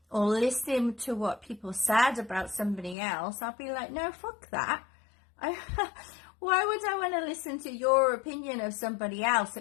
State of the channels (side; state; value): right; drops out; at 3.0 s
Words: or listening to what people said about somebody else, I'll be like, no, fuck that. Why would I want to listen to your opinion of somebody else